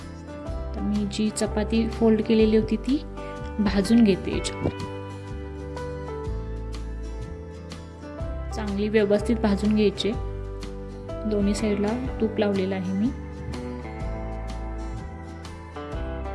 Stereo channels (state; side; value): identical; both; correlation 1.00